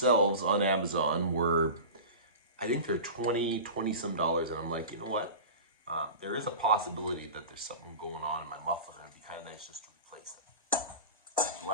on Amazon were, I think they're 20 some dollars. And I'm like, you know what? There is a possibility that there's something going on in my muffler. It'd be kind of nice just to replace it. So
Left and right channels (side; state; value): both; inverted; correlation -0.31